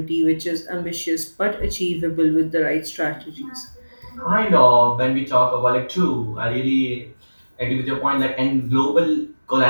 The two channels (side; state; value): both; inverted; correlation -1.00